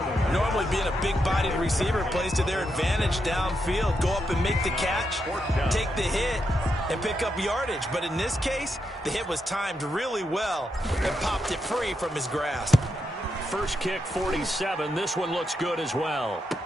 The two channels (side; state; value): both; normal; correlation 0.83